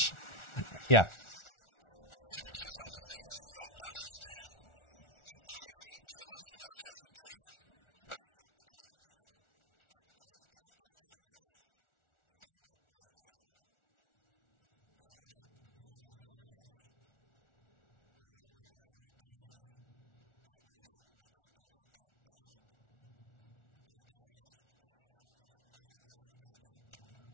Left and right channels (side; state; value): right; late; 1.4 ms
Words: Yeah. Quick to project human features onto things they don't understand. The Typhon kill us without hesitation. But it's not because they're evil. It's because they can't do otherwise. You know what we discovered? They lack mirror neurons. For all their wonderful abilities, there's one thing we can do that they can't. Empathize with the suffering of another living creature.